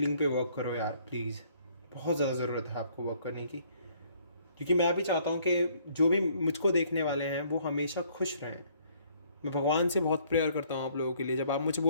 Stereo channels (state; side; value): inverted; both; correlation -0.63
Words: पे वर्क करो यार, प्लीज़। बहुत ज़्यादा ज़रूरत है आपको वर्क करने की, क्योंकि मैं भी चाहता हूँ कि जो भी मुझको देखने वाले हैं वो हमेशा खुश रहें। मैं भगवान से बहुत प्रेयर करता हूँ आप लोगों के लिए। जब आप मुझे